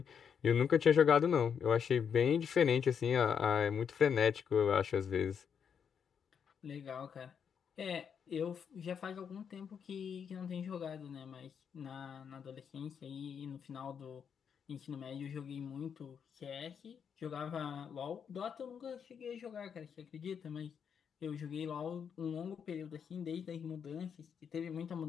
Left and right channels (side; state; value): right; quieter; 7.3 dB